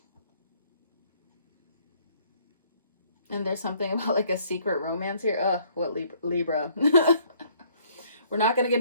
And there's something about like a secret romance here. Ugh, what Libra. We're not going to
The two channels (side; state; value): both; inverted; correlation -0.62